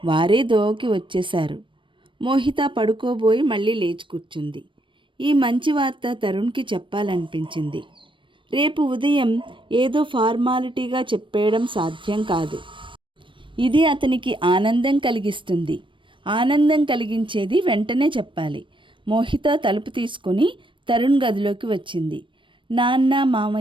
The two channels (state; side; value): late; left; 0.24 ms